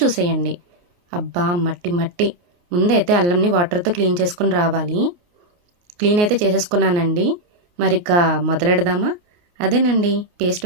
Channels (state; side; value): late; left; 29 ms